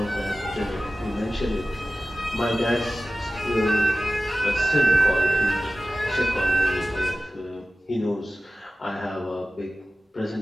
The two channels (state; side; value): normal; both; correlation 0.95